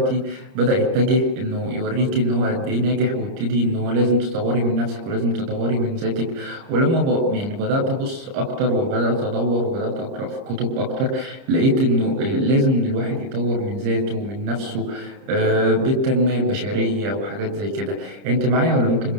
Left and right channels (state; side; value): late; left; 30 ms